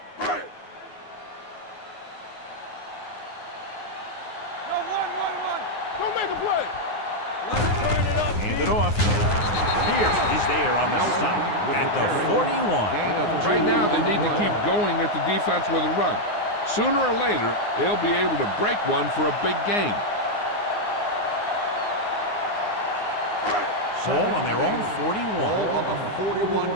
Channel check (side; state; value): right; late; 9.6 ms